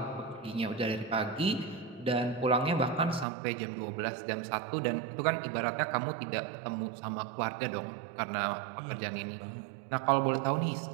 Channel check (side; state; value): left; drops out; at 3.2 s